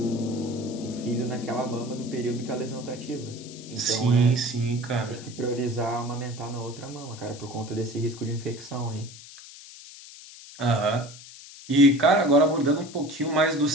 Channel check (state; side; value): noise; left; hiss, 17 dB below the sound